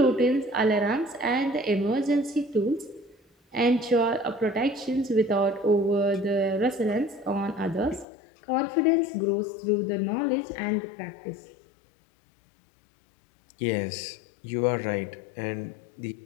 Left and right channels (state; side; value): drops out; right; at 8.1 s